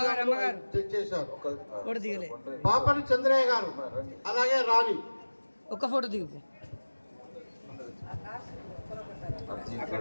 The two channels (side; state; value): both; inverted; correlation -1.00